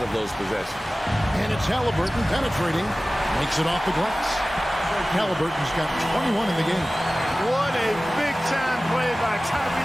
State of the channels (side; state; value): both; normal; correlation 0.97